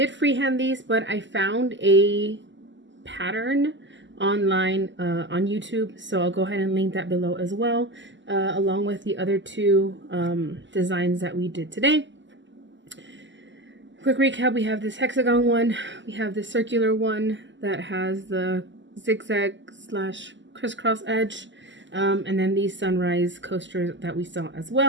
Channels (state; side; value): late; left; 0.54 ms